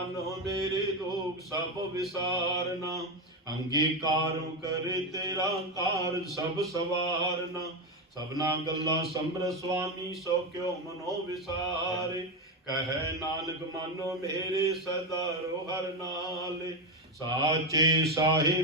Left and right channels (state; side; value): normal; both; correlation 0.12